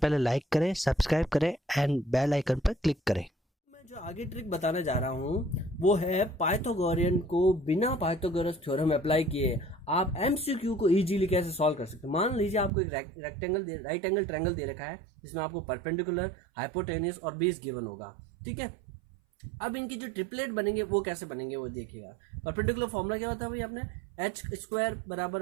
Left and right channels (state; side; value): drops out; left; at 12.7 s